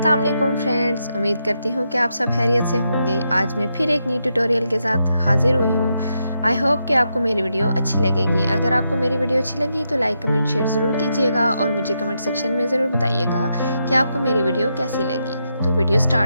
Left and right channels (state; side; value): inverted; both; correlation -0.83